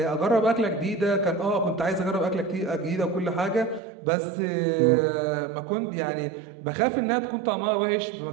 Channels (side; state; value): left; drops out; at 3.8 s